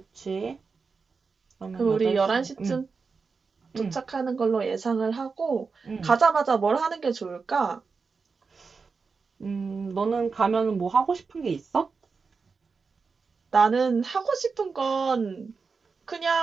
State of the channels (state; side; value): quieter; left; 4.9 dB